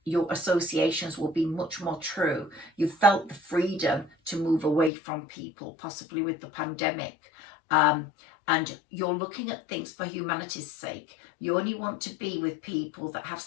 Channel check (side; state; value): right; drops out; at 4.9 s